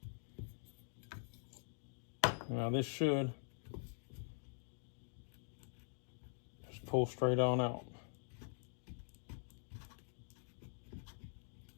Now this should just pull straight on out.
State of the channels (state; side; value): silent; right; digital silence